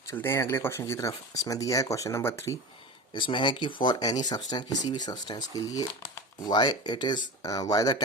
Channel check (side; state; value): both; normal; correlation 0.29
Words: चलते हैं अगले क्वेश्चन की तरफ। इसमें दिया है क्वेश्चन नंबर 3। इसमें है कि फॉर एनी सब्सटेंस, किसी भी सब्सटेंस के लिए, why the